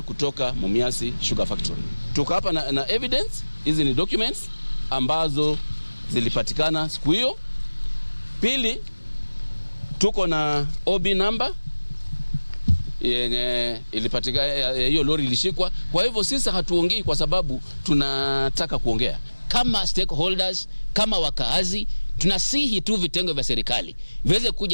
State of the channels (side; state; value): both; inverted; correlation -1.00